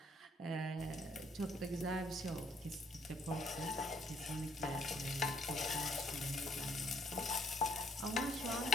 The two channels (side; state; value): both; normal; correlation 0.67